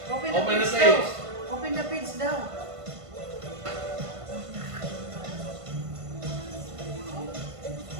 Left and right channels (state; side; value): late; left; 1.5 ms